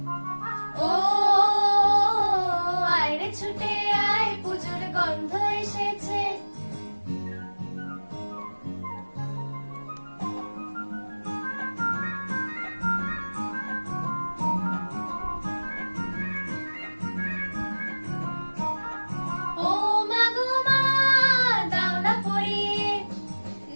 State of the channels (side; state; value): both; inverted; correlation -1.00